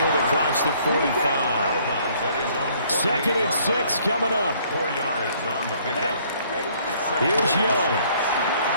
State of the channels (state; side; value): inverted; both; correlation -0.61